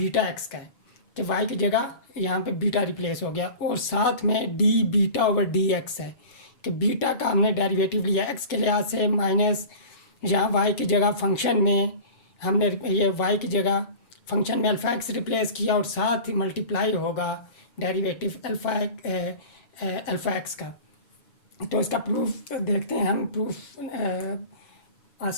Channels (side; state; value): right; late; 7.1 ms